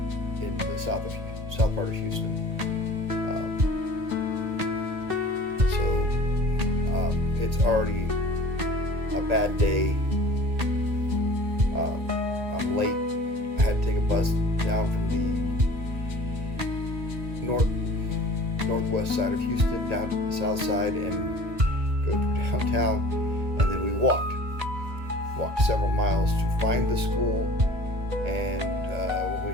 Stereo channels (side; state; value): left; late; 1.8 ms